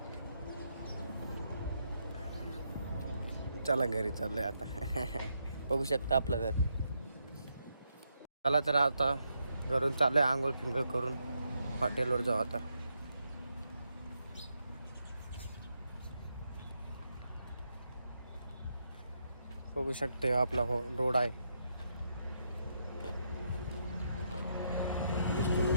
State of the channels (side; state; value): both; inverted; correlation -0.79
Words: चला घरी चाललोय आता. बघू शकता आपलं घर. चला तर आता घरून चाललोय आंघोळ फिंगळ करून हॉटेलवर जाऊ आता. बघू शकते आपला रोड आहे.